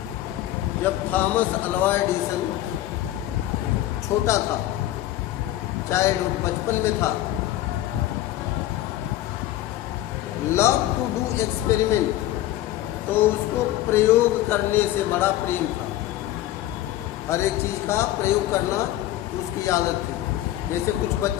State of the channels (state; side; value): quieter; right; 14.4 dB